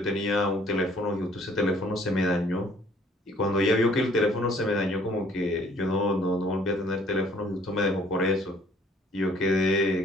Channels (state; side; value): normal; both; correlation 0.59